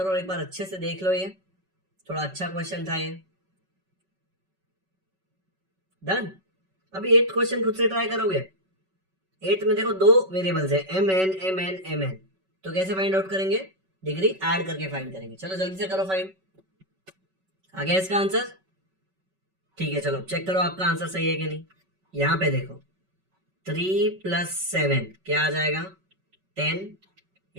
और एक बार अच्छे से देख लो. ये थोड़ा अच्छा क्वेश्चन था ये. डन. अभी 8th क्वेश्चन खुद से ट्राई करोगे. 8th में देखो 2 वेरिएबल्स है mn. तो कैसे फाइंड आउट करेंगे? डिग्री ऐड करके फाइंड करेंगे. चलो जल्दी से करो फाइंड. आ गया इसका आंसर? ठीक है, चलो चेक करो आपका आंसर सही है कि नहीं. यहां पे देखो 3 + 7 क्या आ जाएगा? 10.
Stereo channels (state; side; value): late; left; 5.3 ms